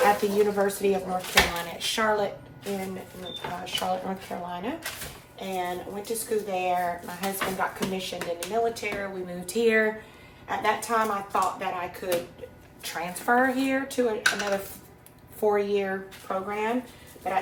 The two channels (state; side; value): identical; both; correlation 1.00